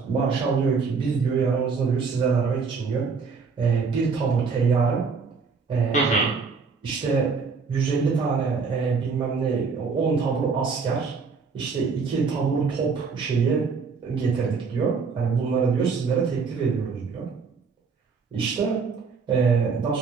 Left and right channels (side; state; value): left; quieter; 5.1 dB